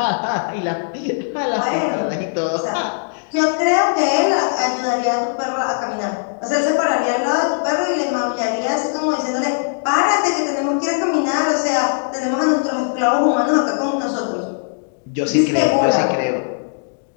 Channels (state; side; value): silent; right; digital silence